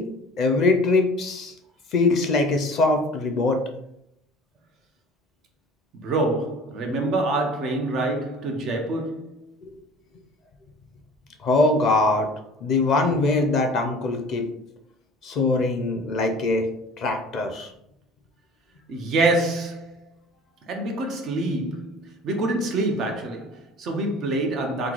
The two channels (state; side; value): normal; both; correlation 0.45